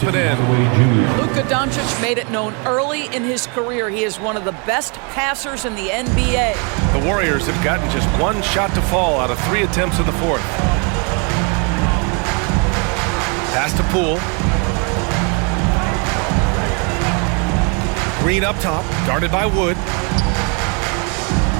and in. Luka Doncic made it known early in his career he is one of the best passers in the NBA. The Warriors have gotten just 1 shot to fall out of 3 attempts in the fourth. Pass to Poole. Green up top, guarded by Wood.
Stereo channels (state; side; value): quieter; left; 35.3 dB